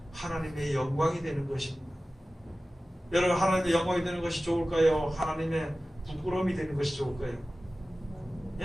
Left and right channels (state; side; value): normal; both; correlation 0.96